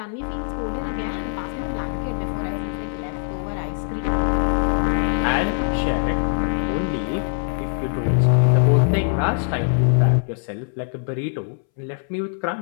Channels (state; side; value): silent; right; 64 dB below the other